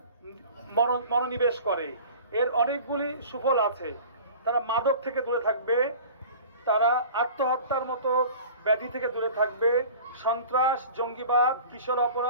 মনোনিবেশ করে। এর অনেকগুলি সুফল আছে। তারা মাদক থেকে দূরে থাকবে, তারা আত্মহত্যার মতো ব্যাধি থেকে দূরে থাকবে, সন্ত্রাস, জঙ্গিবাদ, কিশোর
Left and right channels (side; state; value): both; inverted; correlation -0.42